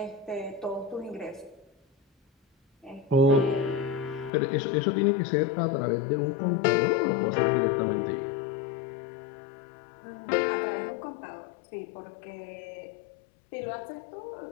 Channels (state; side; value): drops out; right; at 4.3 s